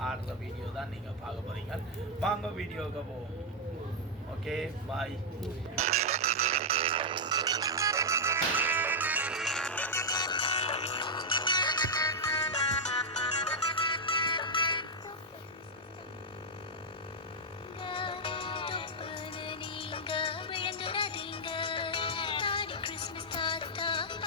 ஆடுற வீடியோ தான் நீங்கள் பார்க்க போகிறீங்க. வாங்க வீடியோவுக்கு போவோம். ஓகே, பாய்.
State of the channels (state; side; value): normal; both; correlation -0.03